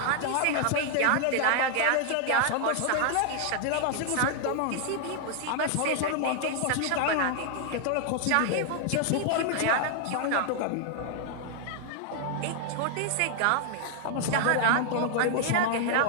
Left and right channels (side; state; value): both; different; correlation 0.00